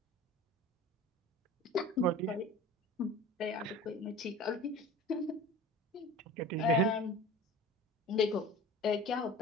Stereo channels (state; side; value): normal; both; correlation 0.39